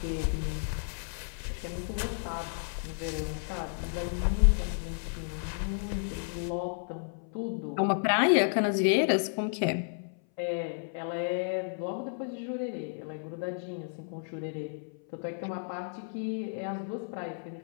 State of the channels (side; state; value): right; silent; 56 dB below the other